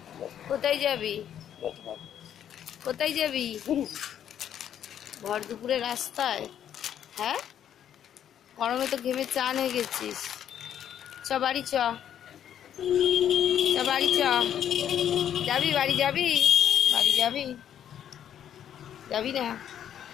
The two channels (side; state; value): right; quieter; 9.9 dB